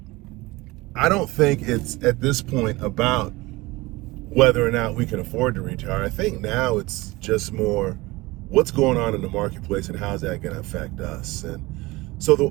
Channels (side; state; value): left; quieter; 21.5 dB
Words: I don't think it's at this point about whether or not we can afford to retire. I think now it's just more what's going on in the marketplace and how's that going to affect us. And so